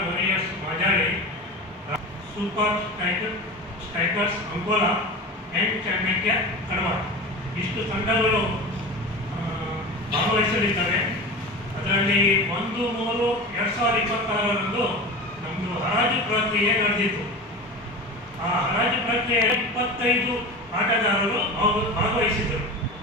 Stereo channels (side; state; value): both; normal; correlation 0.30